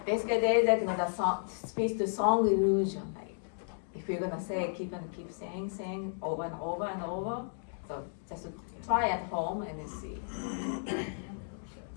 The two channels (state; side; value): silent; right; digital silence